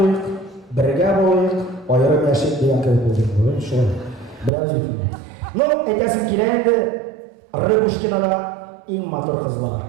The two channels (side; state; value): left; drops out; at 4.5 s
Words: birge boluyuk, ayrım yaşayıp diyen köyü bulduk. Şöyle, bilemiz bütün. No, etesin kileydi, Rıbuşkina'da in motor kızlar.